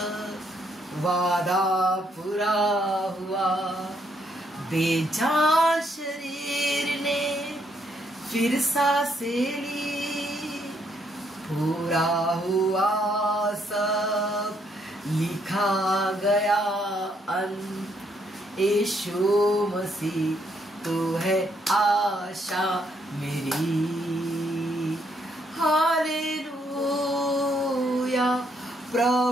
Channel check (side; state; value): both; normal; correlation 0.73